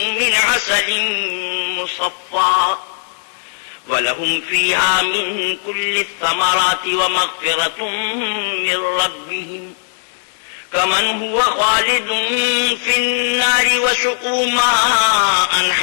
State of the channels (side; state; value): right; silent; digital silence